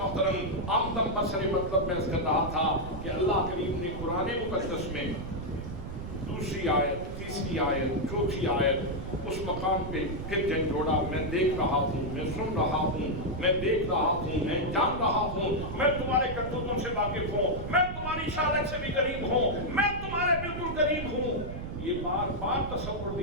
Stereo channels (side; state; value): right; noise; rumble, 7 dB below the sound